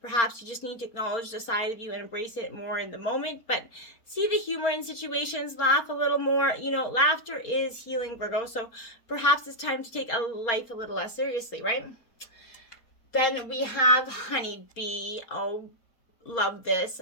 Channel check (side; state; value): right; late; 4.3 ms